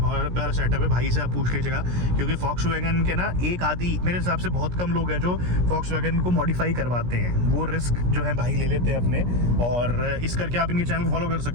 प्यारा सेटअप है। भाई से आप पूछ लीजिएगा, क्योंकि फॉक्सवैगन के ना एक आधी मेरे हिसाब से बहुत कम लोग हैं जो फॉक्सवैगन को मॉडिफाई करवाते हैं, वो रिस्क जो है भाई ले लेते हैं अपने। और इस करके आप इनके चैनल को फॉलो कर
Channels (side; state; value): left; late; 17 ms